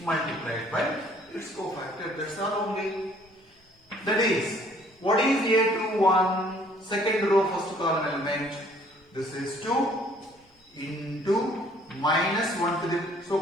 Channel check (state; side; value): normal; both; correlation 0.59